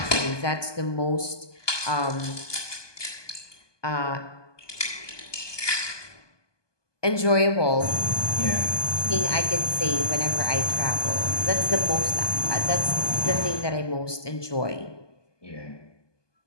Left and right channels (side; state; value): right; late; 1.2 ms